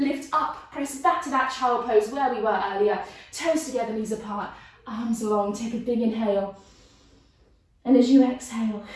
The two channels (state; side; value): identical; both; correlation 1.00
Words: up. Press back to that child pose where we were earlier. Toes together, knees apart. Arms long. Take a big inhale. And as you exhale,